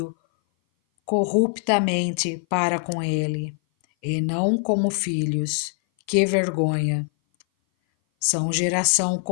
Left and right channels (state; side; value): silent; right; 58 dB below the other